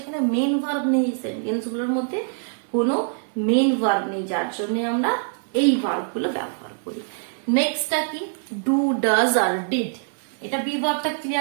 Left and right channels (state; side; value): silent; left; digital silence